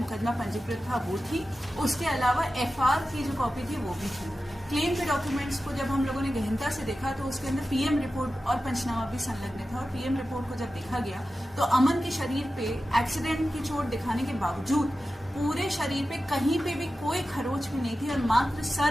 पंजीकृत था, वो थी। उसके अलावा FR की जो कॉपी थी वो भी थी। क्लेम के डॉक्यूमेंट्स को जब हम लोगों ने गहनता से देखा तो उसके अंदर PM रिपोर्ट और पंचनामा भी संलग्न था और PM रिपोर्ट को जब देखा गया तो अमन के शरीर पे एक्सीडेंट की चोट दिखाने के बावजूद पूरे शरीर पे कहीं पे भी कोई खरोच भी नहीं थी और मात्र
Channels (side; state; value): both; normal; correlation 0.93